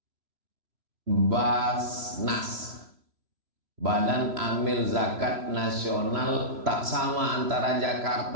Basnas, Badan Amil Zakat Nasional. Tak sama antara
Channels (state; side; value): late; left; 3.0 ms